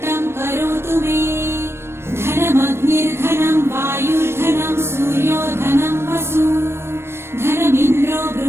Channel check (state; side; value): late; left; 0.12 ms